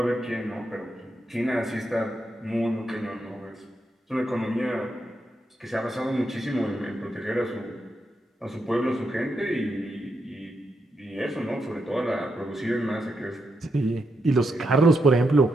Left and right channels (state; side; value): normal; both; correlation 0.83